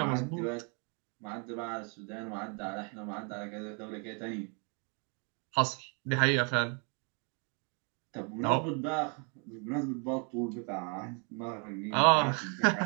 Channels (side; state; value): left; quieter; 38.2 dB